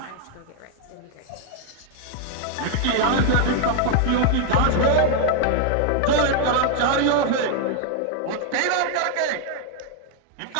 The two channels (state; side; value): different; both; correlation 0.00